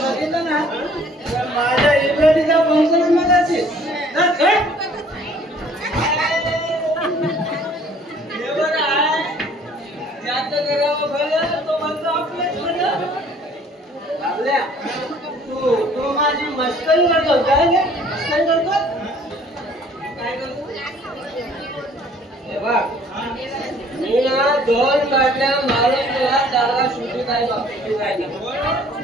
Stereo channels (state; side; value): normal; both; correlation 0.56